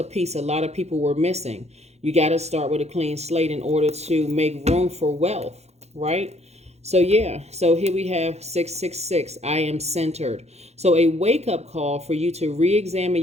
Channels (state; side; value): late; left; 0.31 ms